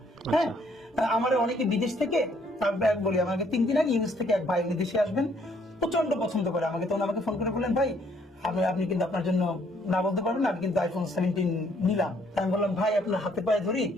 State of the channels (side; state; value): both; normal; correlation 0.66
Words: হ্যাঁ, আমার অনেকে বিদেশ থেকে বলি, আমাকে 3 দিন আগে ইউএস থেকে এক ভাই দেশে আসবেন, প্রচন্ড পছন্দ করে আমাকে, তখন আমাকে ফোন করে বললেন ভাই আপনি কিন্তু আপনার জন্য না বলতে পারবেন, আমি কিন্তু আইফোন 17 নিলাম। আমি বললাম ভাই আপনার হাতে পায়ে ধরি,